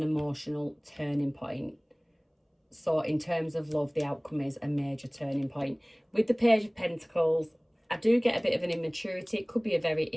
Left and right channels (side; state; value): both; identical; correlation 1.00